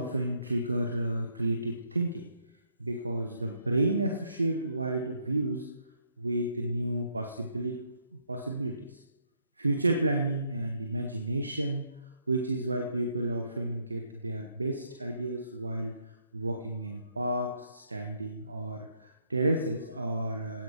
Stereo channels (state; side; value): inverted; both; correlation -0.72